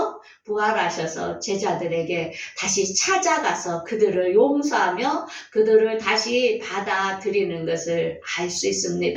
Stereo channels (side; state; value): both; identical; correlation 1.00